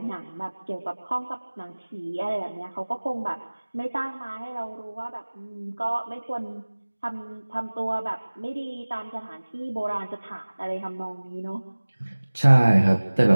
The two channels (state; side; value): inverted; both; correlation -1.00